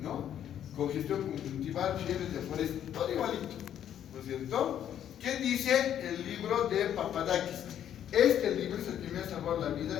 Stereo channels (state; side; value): quieter; right; 10.2 dB